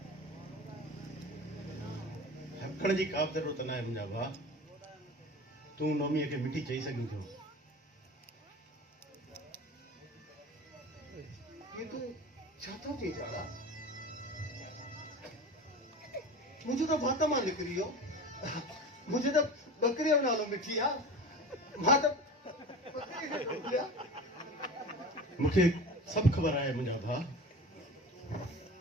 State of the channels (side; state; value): both; normal; correlation 0.34